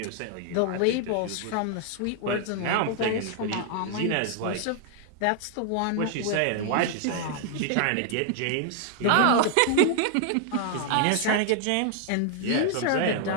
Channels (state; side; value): different; both; correlation 0.00